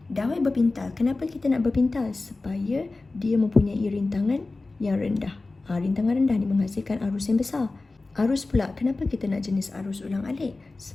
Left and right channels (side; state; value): right; quieter; 3.4 dB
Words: Dawai berpintal. Kenapa kita nak berpintal? Supaya dia mempunyai rintangan yang rendah. Rintangan rendah ni menghasilkan arus yang besar. Arus pula, kenapa kita nak jenis arus ulang-alik?